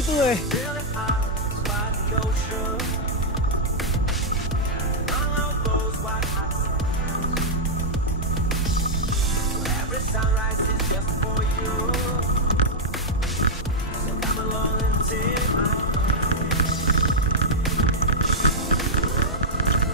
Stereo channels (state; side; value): normal; both; correlation -0.05